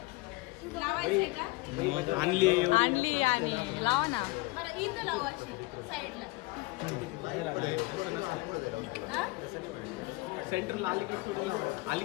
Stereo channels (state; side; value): quieter; right; 22.6 dB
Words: आणली आणि लावा ना. सेंटरला आली